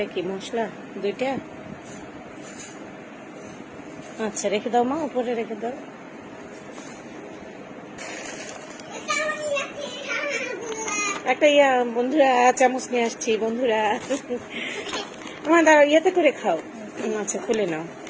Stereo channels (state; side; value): identical; both; correlation 1.00